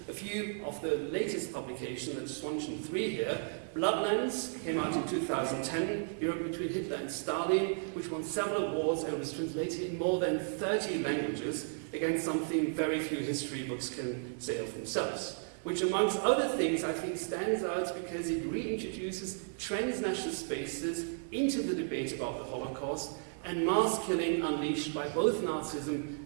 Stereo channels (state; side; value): silent; left; 55 dB below the other